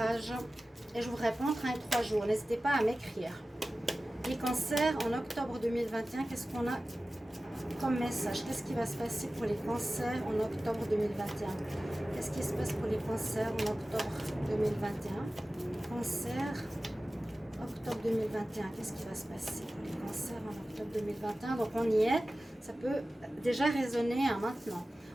Et je vous réponds entre 1 et 3 jours. N'hésitez pas à m'écrire. Les cancers, en octobre 2021, qu'est-ce qu'on a comme message? Qu'est-ce qui va se passer pour les cancers en octobre 2021? Qu'est-ce qui se passe pour les cancers en octobre 2021? Cancer, octobre 2021, qu'est-ce qui va se passer pour les cancers en octobre 2021? Donc on y est, ça peut déjà résonner hein, maintenant.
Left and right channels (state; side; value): normal; both; correlation 0.96